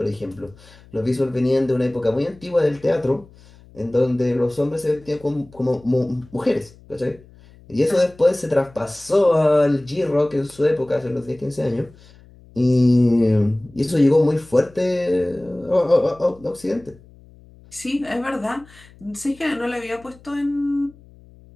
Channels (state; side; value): noise; left; hum, 25 dB below the sound